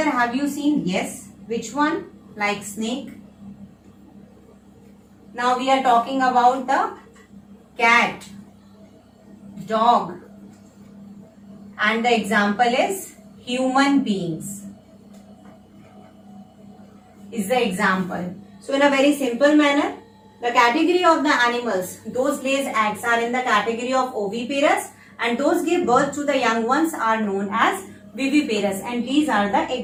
have you seen? Yes. Which one? Like snake. Now we are talking about the cat, dog, and the example is human beings. Is the example. So in a very simple manner, the category of the animals, those lays eggs, are in the category of oviparous, and those give birth to the young ones are known as viviparous, and these are the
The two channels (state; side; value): identical; both; correlation 1.00